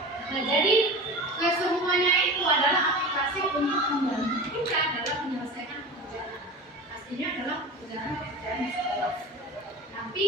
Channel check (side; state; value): both; normal; correlation 0.32